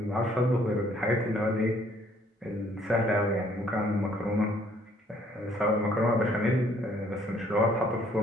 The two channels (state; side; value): normal; both; correlation 0.63